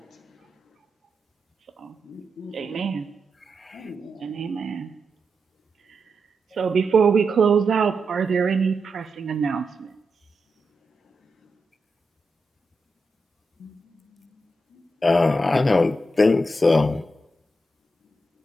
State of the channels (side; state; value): both; normal; correlation 0.86